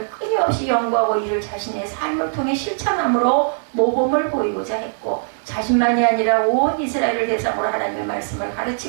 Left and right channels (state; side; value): silent; left; digital silence